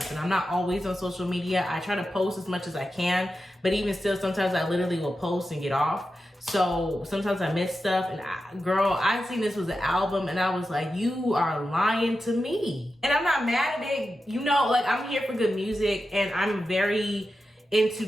And I'm not always on social media. I try to post as much as I can, but even still, sometimes I literally will post and get off. So sometimes I miss stuff. And girl, I seen this was an album and I was like, you are lying to me. And I'm not mad at it. I'm here for good music, and I'm very into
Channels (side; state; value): both; normal; correlation 0.91